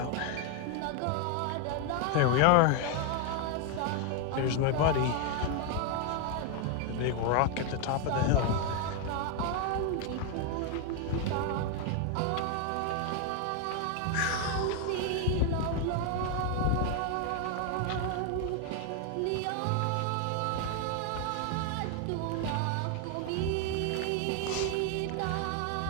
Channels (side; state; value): both; different; correlation 0.01